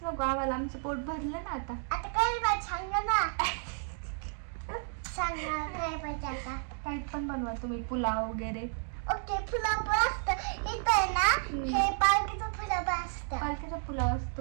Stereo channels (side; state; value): left; silent; 56 dB below the other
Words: नको आम्हाला, आमचं पोट भरलं ना आता. आता काय पाहिजे सांग ना. सांग ना काय पाहिजे आता. काही पण बनवा तुम्ही, पुलाव वगैरे. ओके, पुलाव पण असतं इथं आहे ना. हे पालकीचा पुलाव असतं. पालकीचा पुलाव